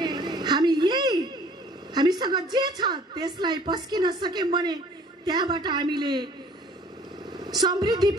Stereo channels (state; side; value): normal; both; correlation 0.53